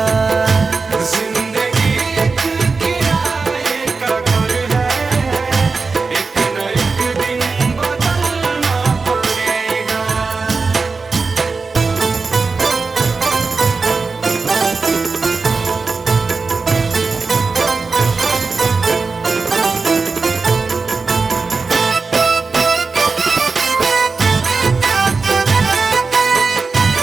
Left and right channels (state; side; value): quieter; left; 4.3 dB